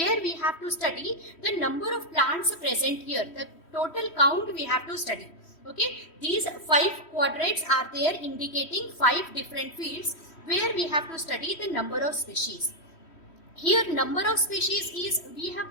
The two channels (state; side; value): late; right; 3.1 ms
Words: we have to study the number of plants present here. The total count we have to study. Okay, these 5 quadrants are there indicating 5 different fields where we have to study the number of species. Here number of species is, we have